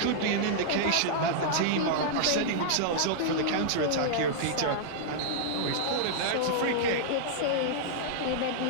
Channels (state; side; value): different; both; correlation -0.02